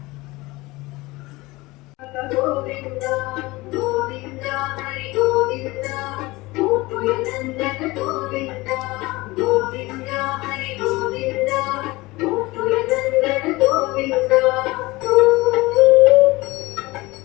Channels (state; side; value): quieter; right; 21.3 dB